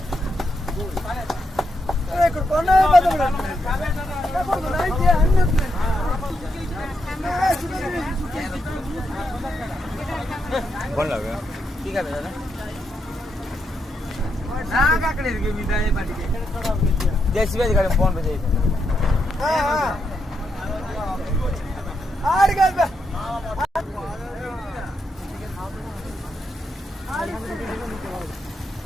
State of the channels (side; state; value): both; normal; correlation 0.81